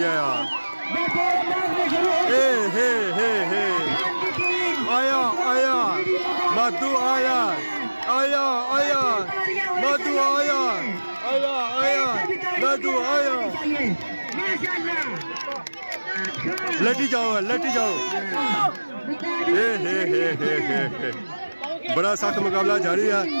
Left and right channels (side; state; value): both; inverted; correlation -1.00